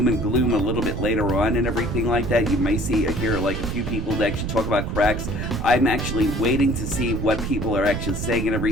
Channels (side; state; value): right; noise; rumble, 3 dB below the sound